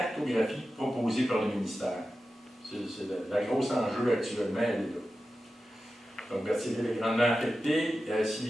proposée par le ministère. C'est la grosse enjeu actuellement, elle est là. Donc, Berthierville est grandement affectée si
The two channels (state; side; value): normal; both; correlation 0.93